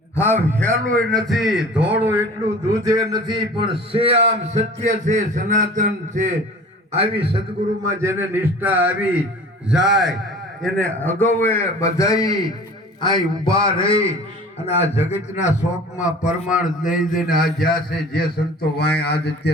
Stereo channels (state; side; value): normal; both; correlation 0.42